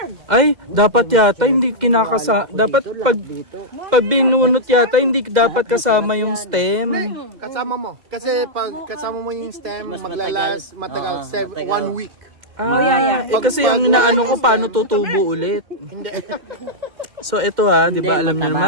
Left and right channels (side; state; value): left; late; 2.1 ms